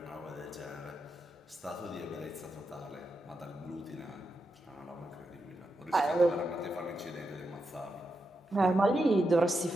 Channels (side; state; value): both; normal; correlation 0.86